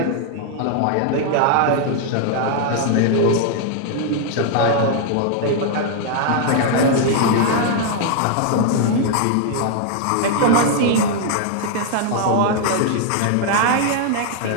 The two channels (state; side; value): different; both; correlation 0.00